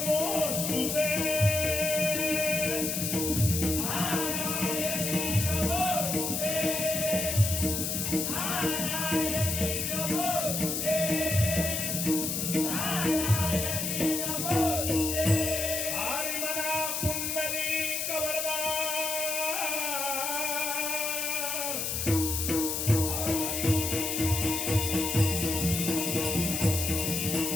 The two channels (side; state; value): left; noise; hiss, 1 dB below the sound